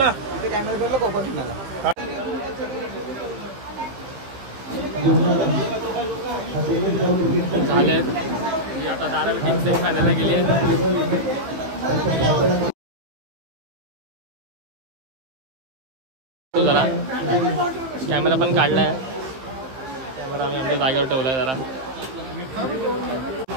तिथे कॅमेरा करलं कोकण तुम्हाला झाले. आता धारावी टीम सेमीफायनलला गेली आहे. जरा कॅमेरा पण काढलाय. कॅमेरा आम्ही आमच्या जागेवर ठेवलाय जरा.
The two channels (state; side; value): late; left; 15 ms